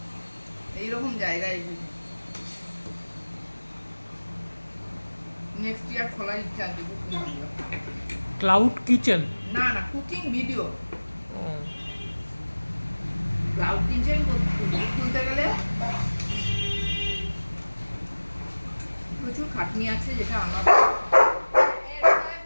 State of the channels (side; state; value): both; inverted; correlation -1.00